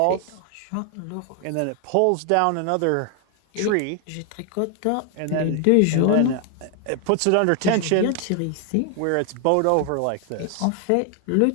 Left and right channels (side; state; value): both; different; correlation 0.00